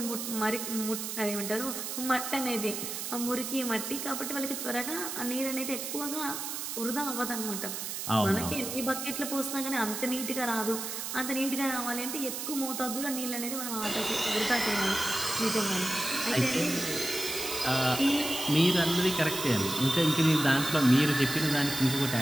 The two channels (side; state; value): right; noise; hiss, 5 dB below the sound